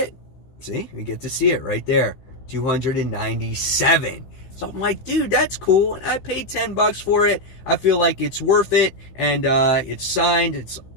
See, you get to see it right there, 297. So I'm like, dude, that's cool, and I paid $10 for it. I feel like it's worth it, and it's signed. It's,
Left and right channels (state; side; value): late; right; 15 ms